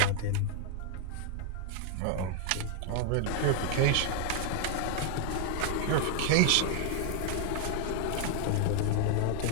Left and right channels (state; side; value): different; both; correlation 0.00